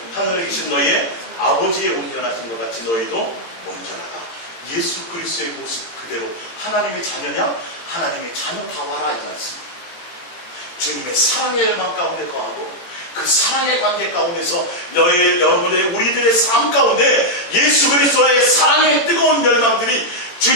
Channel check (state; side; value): late; right; 18 ms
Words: 하늘에 계신 너희의 아버지의 온전하신 것 같이 너희도 온전하라. 예수 그리스도의 모습 그대로 하나님의 자녀냐? 하나님의 자녀다워라 이 말씀. 주님의 사랑의 열망 가운데 거하고 그 사랑의 관계 가운데서 여러분의 우리들의 삶 가운데 예수 그리스도의 사랑의 뜨거운 열망들이,